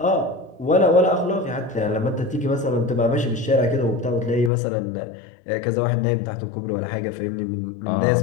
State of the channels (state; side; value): drops out; right; at 4.5 s